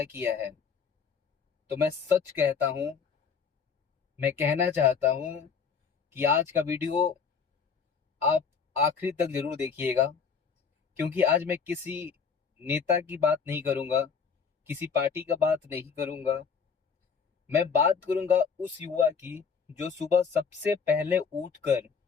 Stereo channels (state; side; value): quieter; right; 6.1 dB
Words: किया है, तो मैं सच कहता हूं, मैं कहना चाहता हूं कि आज का वीडियो आप आखिरी तक जरूर देखिएगा। क्योंकि आज मैं किसी नेता की बात नहीं करूंगा, किसी पार्टी का बात नहीं करूंगा। मैं बात करूंगा उस युवा की जो सुबह सबसे पहले उठकर